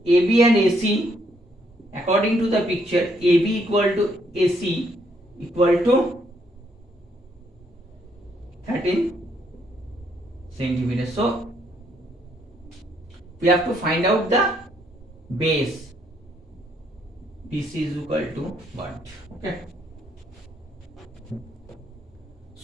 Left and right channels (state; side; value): normal; both; correlation 0.71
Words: AB and AC, according to the picture, AB equal to AC equal to 13 centimeters. So we have to find out the base. BC is equal to what? Okay.